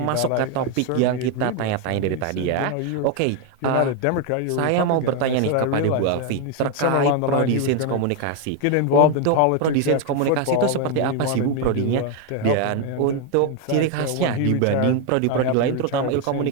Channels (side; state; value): both; different; correlation 0.01